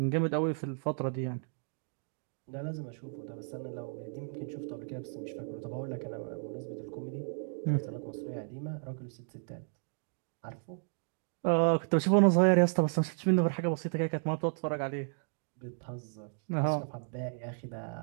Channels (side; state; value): left; silent; 55 dB below the other